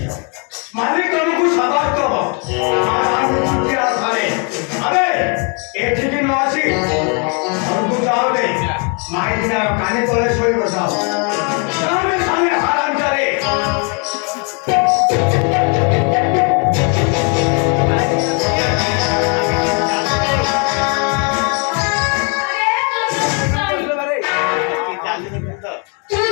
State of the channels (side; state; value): right; quieter; 36.6 dB